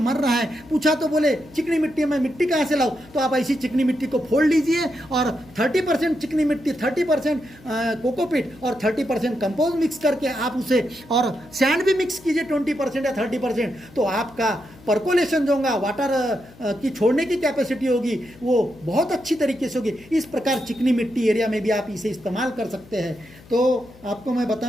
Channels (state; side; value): noise; left; hum, 23 dB below the sound